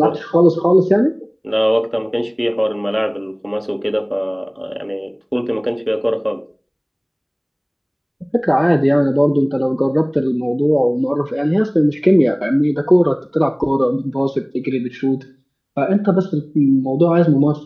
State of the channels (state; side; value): identical; both; correlation 1.00